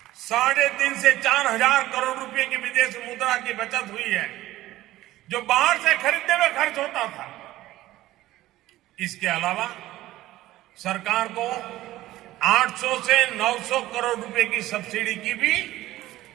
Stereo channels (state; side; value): quieter; left; 15.8 dB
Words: 3.5 से 4 हजार करोड़ रुपए की विदेश मुद्रा की बचत हुई है, जो बाहर से खरीदने में खर्च होता था। इसके अलावा सरकार को 800 से 900 करोड़ रुपए की सब्सिडी की भी